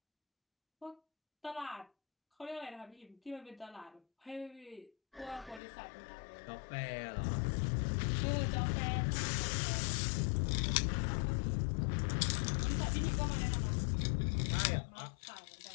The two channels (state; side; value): drops out; right; at 5.6 s